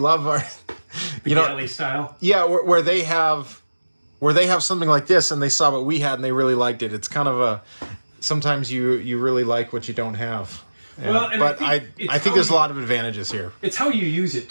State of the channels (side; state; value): both; inverted; correlation -1.00